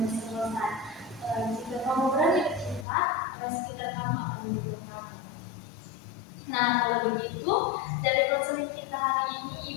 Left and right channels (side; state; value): right; drops out; at 2.9 s